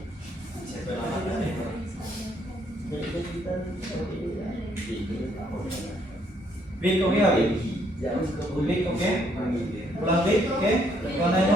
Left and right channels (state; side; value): normal; both; correlation 0.69